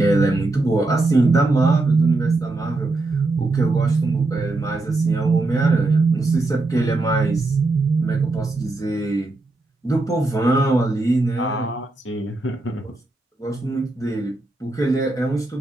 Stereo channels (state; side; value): quieter; left; 3.1 dB